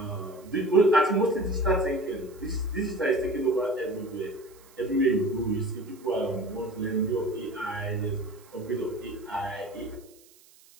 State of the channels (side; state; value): right; noise; hiss, 26 dB below the sound